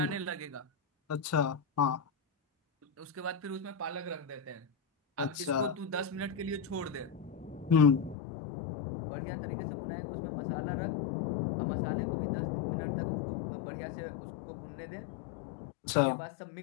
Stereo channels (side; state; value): right; drops out; at 8.2 s